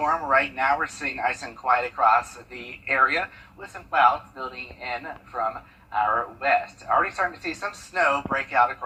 Right now we're seeing nice and quiet across the area with some clouds building in from our west. Already starting to see some snow break out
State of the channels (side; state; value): both; identical; correlation 1.00